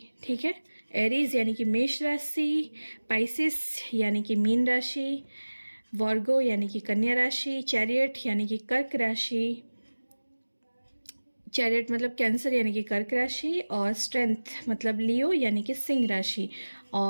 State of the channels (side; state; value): both; inverted; correlation -1.00